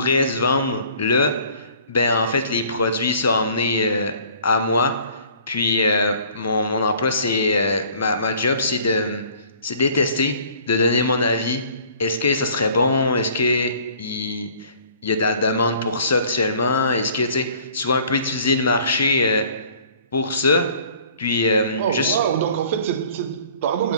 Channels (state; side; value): inverted; both; correlation -0.54